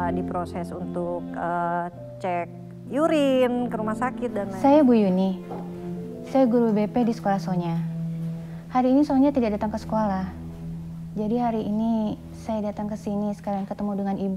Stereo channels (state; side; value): identical; both; correlation 1.00